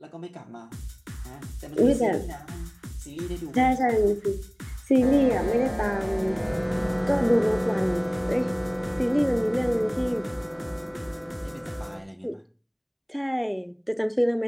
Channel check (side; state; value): both; identical; correlation 1.00